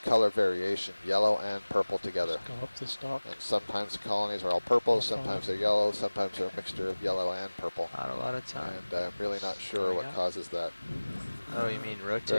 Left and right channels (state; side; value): inverted; both; correlation -1.00